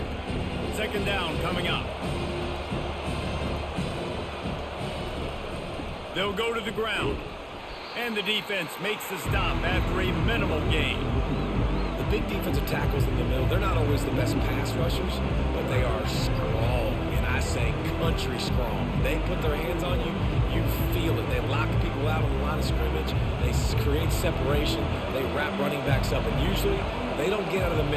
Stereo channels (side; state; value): both; identical; correlation 1.00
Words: 2nd down coming up. They'll go to the ground. And the defense makes the stop after a minimal gain. The big defensive tackles in the middle, they're not always the best pass rushers, but they are strong, and I say country strong. They put their hands on you, you feel it. They lock people out on the line of scrimmage. They create separation. They wrap running backs up, and usually they don't get out of the